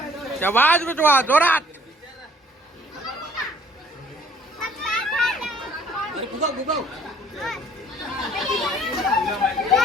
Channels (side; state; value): both; normal; correlation 0.57